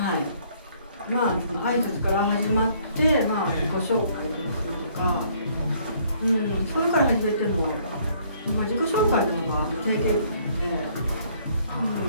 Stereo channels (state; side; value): inverted; both; correlation -0.63